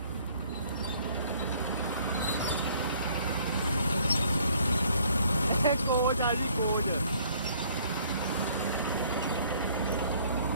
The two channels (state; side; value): inverted; both; correlation -0.59